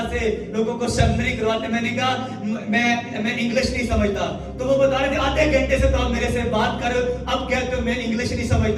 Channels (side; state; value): both; identical; correlation 1.00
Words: से लोगों को सेमिनरी करवाते। मैंने कहा मैं इंग्लिश नहीं समझता। तो वो बता रहे थे आधे घंटे से तो आप मेरे से बात कर रहे हो, अब कहते हो मैं इंग्लिश नहीं